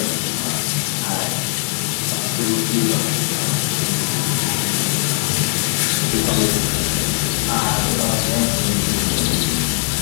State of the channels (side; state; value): right; silent; 60 dB below the other